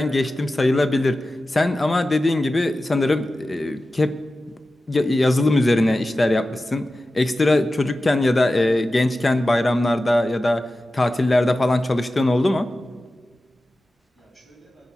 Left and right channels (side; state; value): both; normal; correlation 0.94